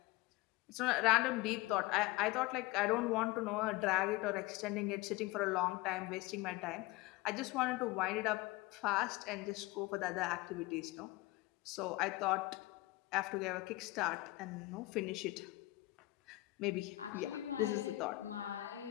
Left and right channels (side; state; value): right; quieter; 19.7 dB